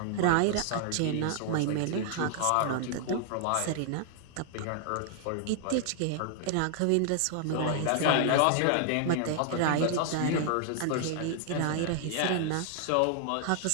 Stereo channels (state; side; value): different; both; correlation -0.01